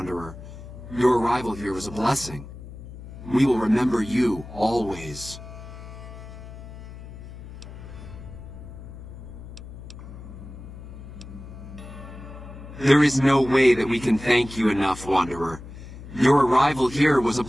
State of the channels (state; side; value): noise; left; hum, 14 dB below the sound